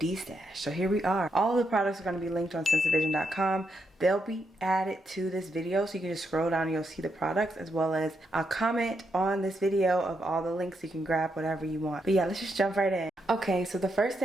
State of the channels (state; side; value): normal; both; correlation 0.81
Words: So here we are. All the products are going to be linked on sensevision.com. They'll be added to this video, so you can just scroll down and you'll see the products, as well as I'll comment on this video of all the links so you can grab whatever you want. But yeah, let's just jump right in. Okay, so the first